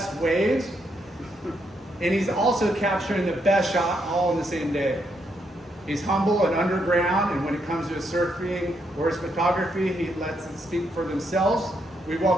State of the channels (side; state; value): both; normal; correlation 0.77